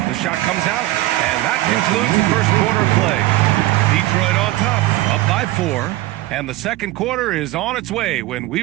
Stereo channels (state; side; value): quieter; left; 17.2 dB